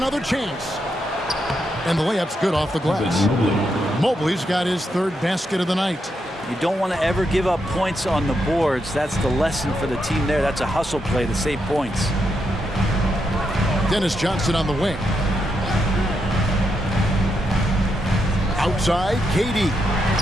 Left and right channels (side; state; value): both; normal; correlation 0.82